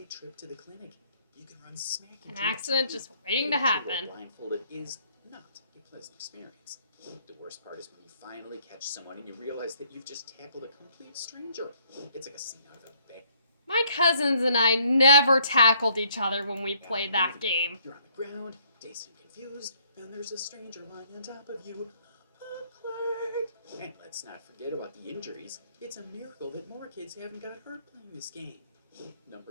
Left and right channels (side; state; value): both; inverted; correlation -0.65